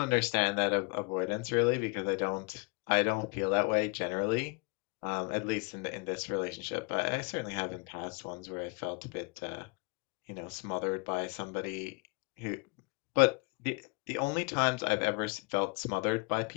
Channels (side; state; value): right; quieter; 30.0 dB